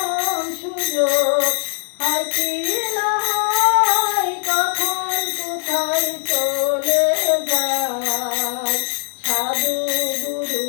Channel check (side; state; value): right; silent; 60 dB below the other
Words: সুযোগ হয় কি না হয়, কখন কোথায় চলে যায় সাধু গুরু